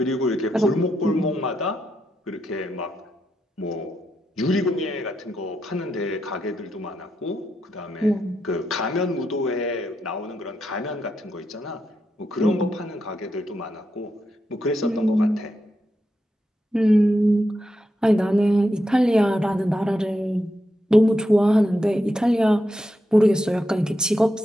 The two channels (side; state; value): both; normal; correlation 0.84